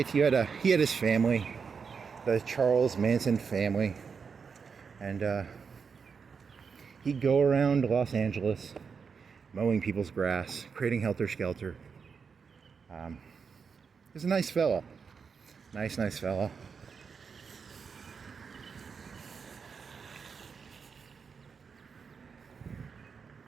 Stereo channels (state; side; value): quieter; left; 5.8 dB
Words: He had his family. The Charles Manson family. And he'd go around Los Angeles mowing people's grass, creating helter-skelter. He's a nice fella. Nice fella.